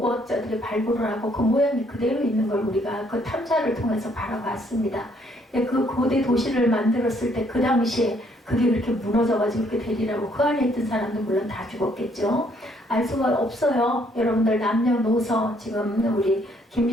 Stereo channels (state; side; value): normal; both; correlation 0.67